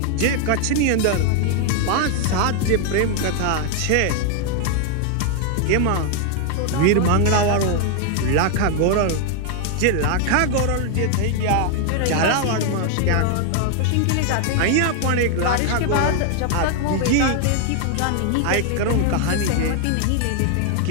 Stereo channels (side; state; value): both; different; correlation 0.00